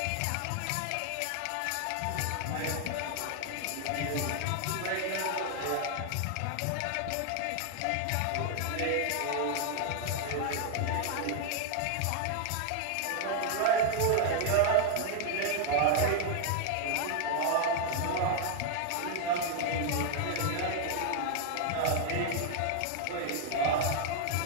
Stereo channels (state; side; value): different; both; correlation 0.00